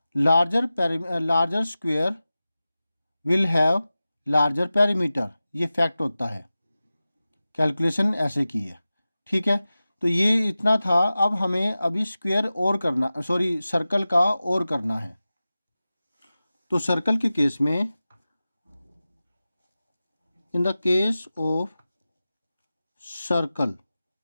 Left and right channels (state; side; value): inverted; both; correlation -0.95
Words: larger square will have larger perimeter, ये फैक्ट होता है, कैलकुलेशन ऐसे की है। ठीक है, तो ये इतना था। अब हमें अभी स्क्वायर और करना, सॉरी सर्कल का और करना है। तो सर्कल के केस में, in the case of circle,